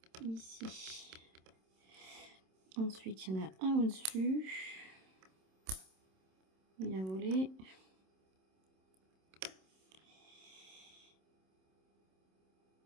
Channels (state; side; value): late; left; 27 ms